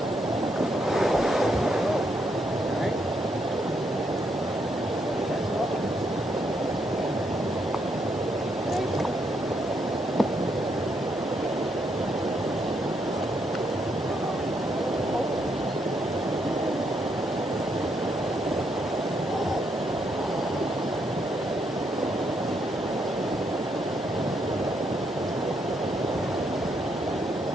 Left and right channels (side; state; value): both; normal; correlation 0.76